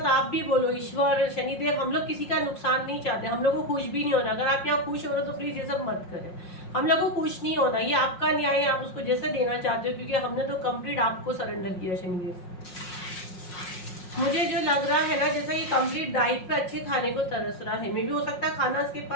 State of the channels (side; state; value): right; late; 5.5 ms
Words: आप भी बोलो ईश्वर शनिदेव, हम लोग किसी का नुकसान नहीं चाहते, हम लोग को खुश भी नहीं होना। अगर आप यहाँ खुश हो रहे हो तो प्लीज ये सब मत करें। हम लोग को खुश नहीं होना, ये आपका न्याय है, आप उसको जैसे देना चाहते हो क्योंकि हमने तो कंप्लीट आपको सरेंडर किया शनिदेव। मुझे जो लग रहा है ना जैसा ये कंप्लीट डाइट पे अच्छे खाने को तरस रहा है। मे भी हो सकता है खाना इसके